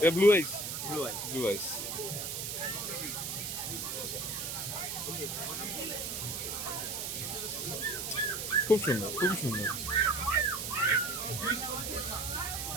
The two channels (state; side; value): noise; right; hiss, 4 dB below the sound